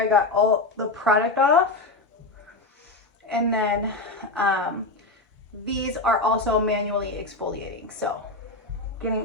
got all the product off, and then these are also manually exfoliating, so getting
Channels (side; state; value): right; quieter; 3.2 dB